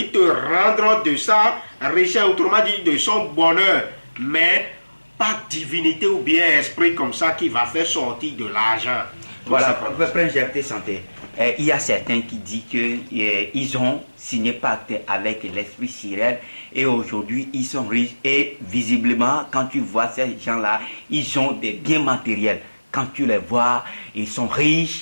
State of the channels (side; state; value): both; inverted; correlation -1.00